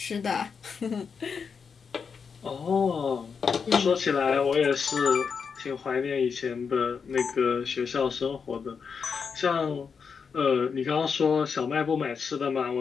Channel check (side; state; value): right; quieter; 5.9 dB